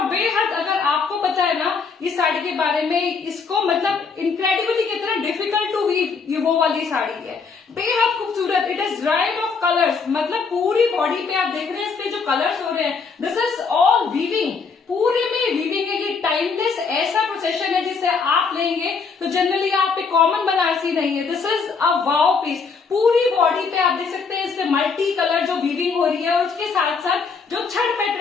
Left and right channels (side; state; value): right; quieter; 5.2 dB